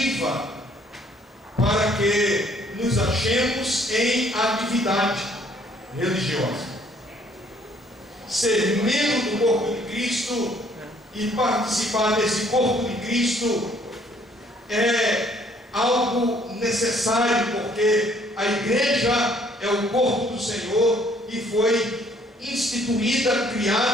para que nos achemos em atividade religiosa. Ser membro do corpo de Cristo e participar desse corpo de Cristo é algo necessário, porque a igreja é o corpo do Senhor e foi instituída,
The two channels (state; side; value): normal; both; correlation 0.62